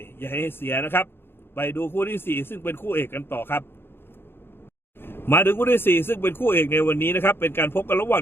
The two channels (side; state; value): right; late; 0.11 ms